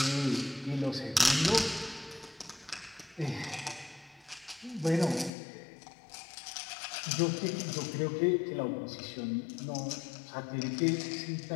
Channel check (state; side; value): drops out; right; at 5.3 s